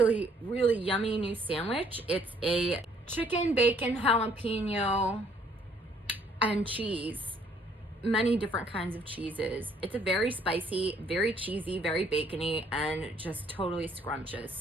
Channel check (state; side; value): normal; both; correlation 0.64